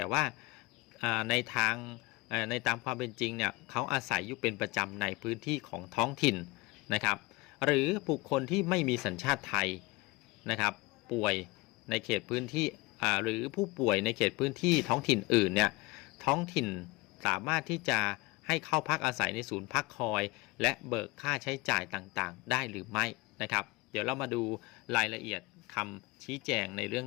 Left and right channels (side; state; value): right; quieter; 22.4 dB